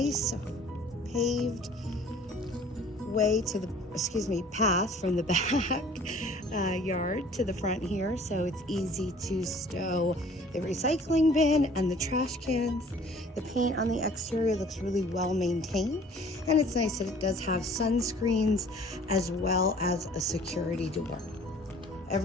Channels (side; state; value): both; normal; correlation 0.52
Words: paved way to the, path from the back yard to the front here, so it's easy to stow the recycling bin and the trash cans. The paint on the exterior looks really well maintained, and it's nice that it does have sunscreens as well as a security door.